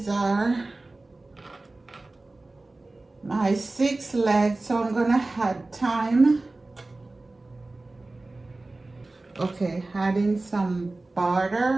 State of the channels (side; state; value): left; quieter; 3.1 dB